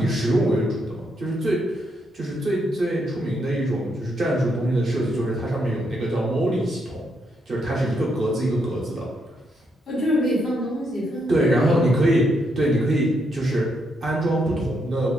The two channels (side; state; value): both; normal; correlation 0.78